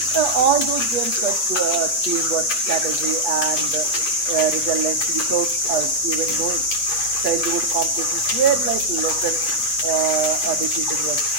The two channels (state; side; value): late; right; 8.3 ms